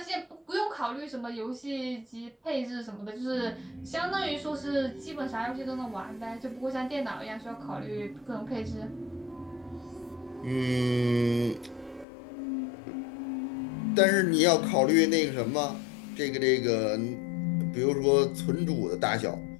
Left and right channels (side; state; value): right; drops out; at 12.1 s